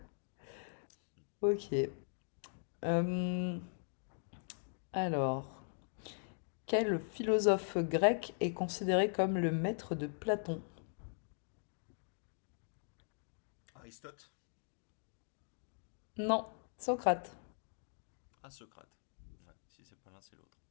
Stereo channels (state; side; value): silent; right; digital silence